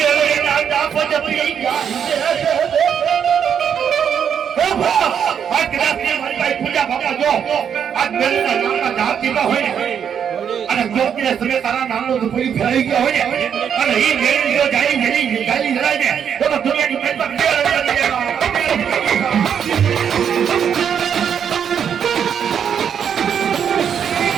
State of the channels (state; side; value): quieter; left; 8.0 dB